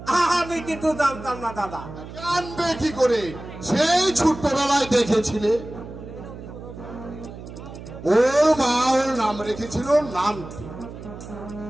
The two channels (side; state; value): right; noise; hum, 13 dB below the sound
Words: আমি কিন্তু জানতাম না দাদা। জানবে কি করে? সেই ছোট্টবেলায় দেখেছিলে ওর মা ওর নাম রেখেছিল নাম।